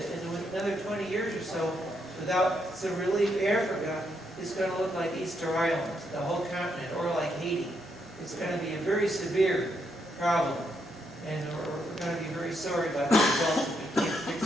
in another 20 years or so, without some relief, Africa is going to look like Easter Island, the whole continent, or like Haiti. It's going to be a very severe problem, and we're going to be very sorry about the results if we can't fix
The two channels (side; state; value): both; normal; correlation 0.78